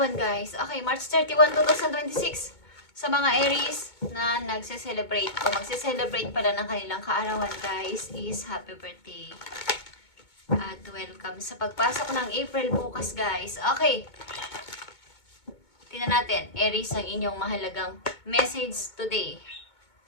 guys. Okay, March 31, 2026. Sa mga Aries na nagse-celebrate o magse-celebrate pala ng kanilang kaarawan, guys, is happy birthday. At welcome sa pagpasok ng April bukas, guys. Okay. Tingnan natin, Aries, ang inyong mahalagang message today.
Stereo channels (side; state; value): right; late; 2.2 ms